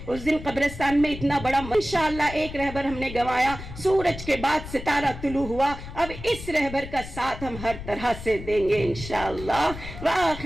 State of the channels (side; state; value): left; noise; rumble, 11 dB below the sound